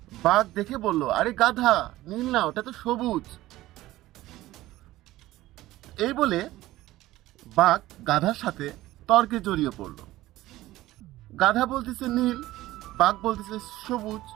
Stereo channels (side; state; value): left; quieter; 16.5 dB